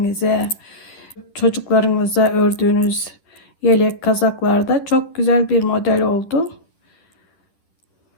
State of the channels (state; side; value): late; right; 10 ms